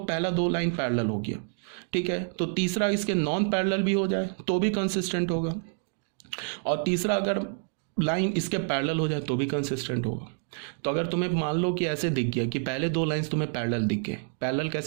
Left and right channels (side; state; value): left; silent; digital silence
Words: 2 लाइन पैरेलल हो गया, ठीक है, तो तीसरा इसके नॉन पैरेलल भी हो जाए तो भी कंसिस्टेंट होगा, और तीसरा अगर लाइन इसके पैरेलल हो जाए तो भी कंसिस्टेंट होगा। तो अगर तुम्हें मान लो कि ऐसे दिख गया कि पहले 2 लाइंस तुम्हें पैरेलल दिख गए, पैरेलल